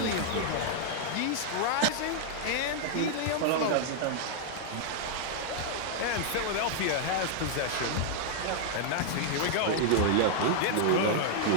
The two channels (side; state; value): both; different; correlation -0.01